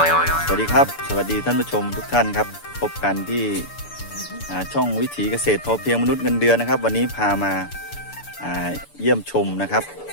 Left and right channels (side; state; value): right; late; 6.9 ms